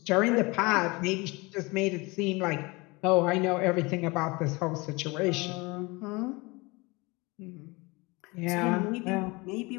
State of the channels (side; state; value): right; quieter; 25.0 dB